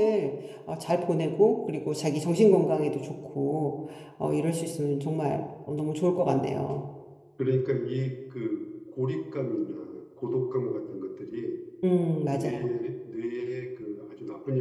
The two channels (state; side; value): identical; both; correlation 1.00